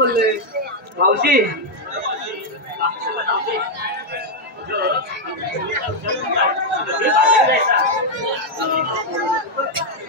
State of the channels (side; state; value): both; normal; correlation 0.01